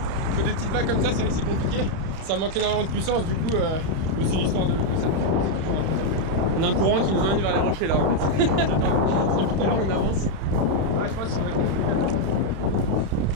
Il faut des petites vagues comme ça, c'est vrai que c'est compliqué. Ça manque énormément de puissance, du coup c'est l'histoire de ça. C'est toujours un plaisir à faire. On a un courant qui nous emmène vers les rochers là en fait. Depuis tout à l'heure on avance. Ouais, je pense qu'il faudrait qu'on se décale là-bas.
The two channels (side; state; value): left; late; 31 ms